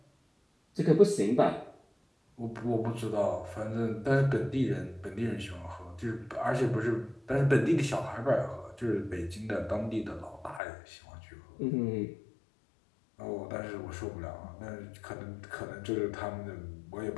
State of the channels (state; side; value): drops out; right; at 10.6 s